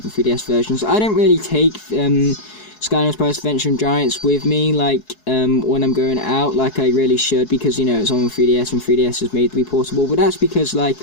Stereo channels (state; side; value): late; right; 4.7 ms